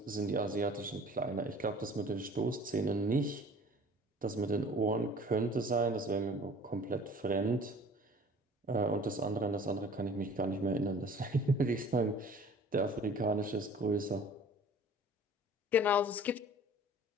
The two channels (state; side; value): normal; both; correlation 0.48